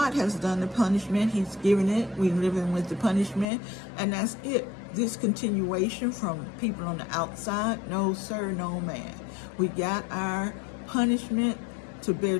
has done the punishment. He's given it. We're living with the punishment, and that's it. This continuation from people on the outside, no sir, no man. We got our punishment to bear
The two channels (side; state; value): right; drops out; at 3.5 s